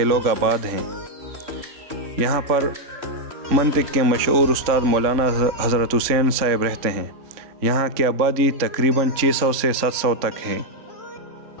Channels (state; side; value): late; left; 3.5 ms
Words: لوگ آباد ہیں۔ یہاں پر منطق کے مشہور استاد مولانا حضرت حسین صاحب رہتے ہیں۔ یہاں کی آبادی تقریباً 600 سے 700 تک ہے۔